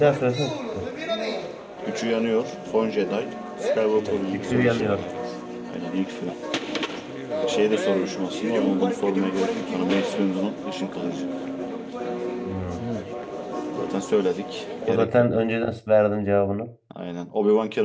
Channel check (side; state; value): both; identical; correlation 1.00